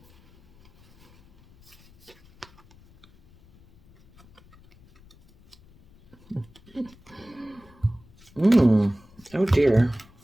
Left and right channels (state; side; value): noise; left; rumble, 28 dB below the sound